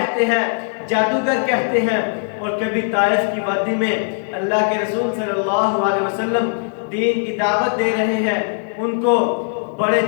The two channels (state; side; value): silent; right; digital silence